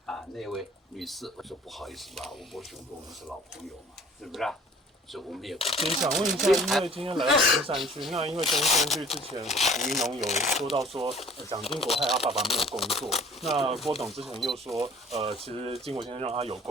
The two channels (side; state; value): both; normal; correlation 0.51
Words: 那位女士？我说不好意思吧，吴伯雄跟我们是老朋友嘛，是不是？所以我们也不。想问一下，因为今天来到中山区，那因为中山区之前吴怡农有说到说，蒋经国害他爸爸没有工作，那郭董之前又说，其实经国先生让他有